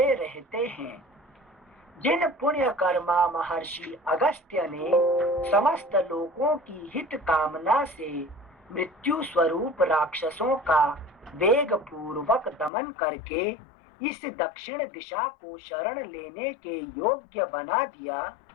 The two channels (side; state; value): right; drops out; at 12.7 s